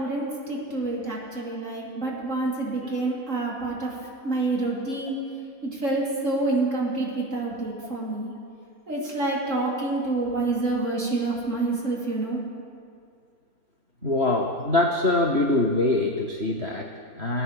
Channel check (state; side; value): late; left; 3.7 ms